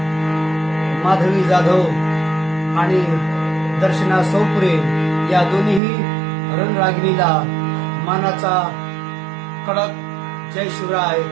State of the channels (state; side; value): drops out; left; at 5.8 s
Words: माधवी जाधव आणि दर्शना सौपुरे या दोन्हीही रणरागिणीला मानाचा कडक जय शिवराय